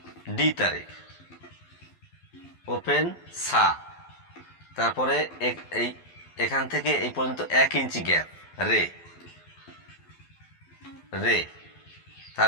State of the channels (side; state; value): right; late; 12 ms